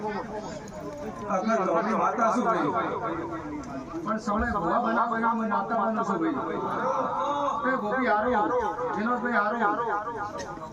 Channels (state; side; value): identical; both; correlation 1.00